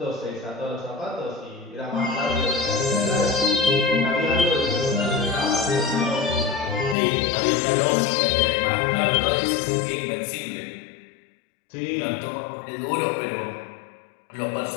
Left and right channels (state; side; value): drops out; right; at 7.0 s